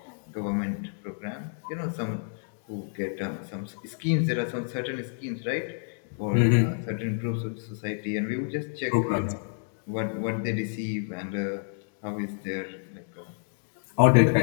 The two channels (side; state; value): right; silent; digital silence